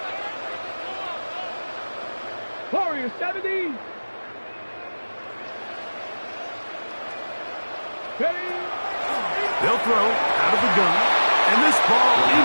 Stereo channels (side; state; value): both; inverted; correlation -1.00